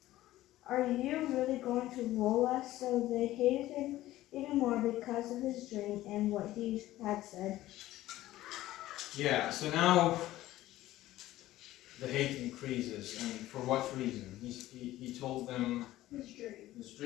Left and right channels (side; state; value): right; quieter; 15.5 dB